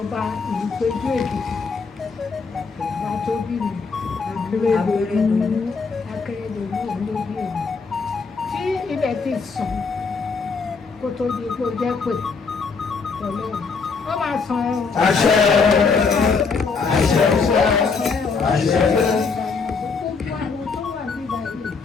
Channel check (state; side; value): quieter; right; 4.9 dB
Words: ìlúpéjú Èkìtì bàbá tó bí mi Akérèdọ́lù òun ló bí èmi tí ilẹ̀ ti sàn kó tó di pé ó jẹ́ pé Ọlọ́run ó máa san ẹ̀ o. Àṣẹ àṣẹ àṣẹ.